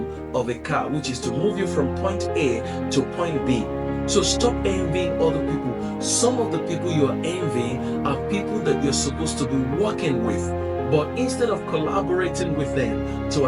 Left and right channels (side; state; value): both; identical; correlation 1.00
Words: of a car, which is to move you from point A to point B. So stop envying other people. Some of the people you are envying are people that you're supposed to be working with. But instead of collaborating with them to